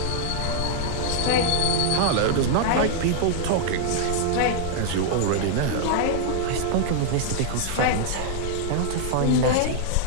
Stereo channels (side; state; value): both; different; correlation -0.01